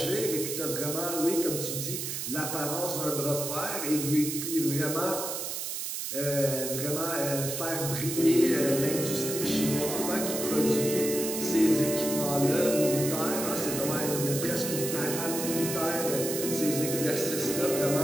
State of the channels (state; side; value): noise; right; hiss, 4 dB below the sound